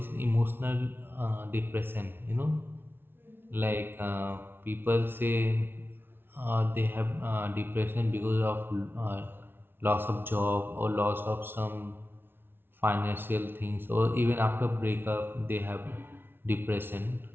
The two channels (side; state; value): left; late; 0.11 ms